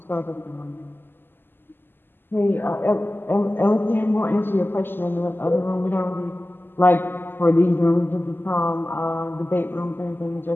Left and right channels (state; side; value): late; right; 0.097 ms